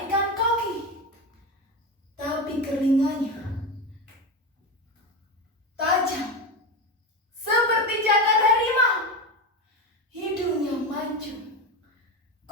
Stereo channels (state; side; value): normal; both; correlation 0.19